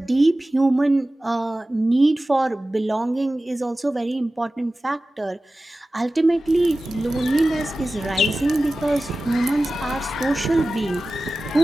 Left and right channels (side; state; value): both; normal; correlation 0.96